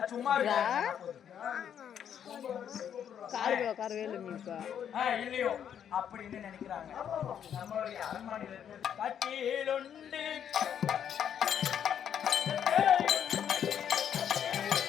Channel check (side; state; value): right; quieter; 8.9 dB